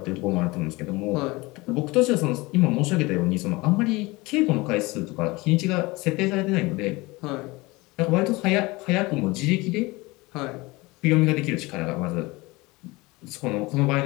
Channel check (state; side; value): quieter; right; 22.8 dB